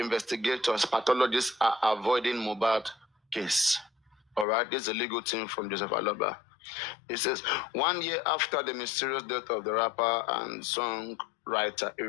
pathologists are avoiding Mohbad case. All right, this is a legal team from Joseph Aloba. It says, 1 year after the mysterious death of the rapper and songwriter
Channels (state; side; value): drops out; right; at 4.5 s